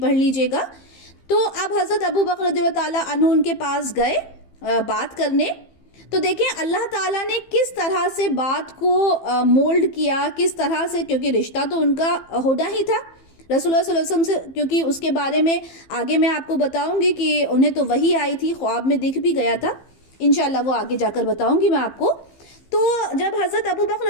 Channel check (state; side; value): late; right; 15 ms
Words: لیجئے گا۔ تو اب حضرت ابو بکر رضی اللہ تعالیٰ عنہ ان کے پاس گئے بات کرنے۔ تو دیکھیں اللہ تعالیٰ نے کس طرح سے بات کو مولڈ کیا، کس طرح سے، کیونکہ رشتہ تو ان کا ہونا ہی تھا رسول اللہ صلی اللہ علیہ وسلم سے، کیونکہ اس کے بارے میں آگے میں آپ کو بتاؤں گی کہ انہیں تو وحی آئی تھی، خواب میں دکھ بھی گیا تھا، انشاءاللہ وہ آگے جا کر بتاؤں گی میں آپ کو۔ تو جب حضرت ابو بکر